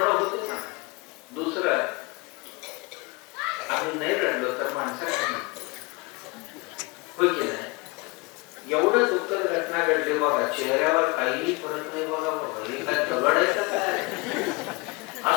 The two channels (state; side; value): quieter; right; 26.8 dB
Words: होतं ना. दुसरं, आम्ही नाही रडलो तर माणसं काय म्हणतो, होय की नाही. एवढं दुःखद घटना घडली बघा, चेहऱ्यावर काहीही फरक नाही बघा. बाबा हे काय दगड आहे का काय,